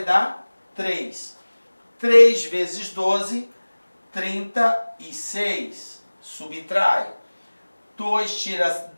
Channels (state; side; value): inverted; both; correlation -1.00